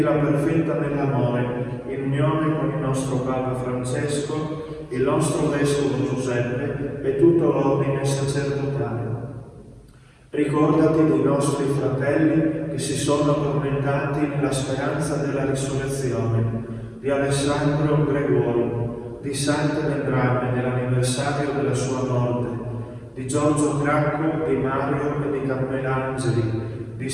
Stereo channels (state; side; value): identical; both; correlation 1.00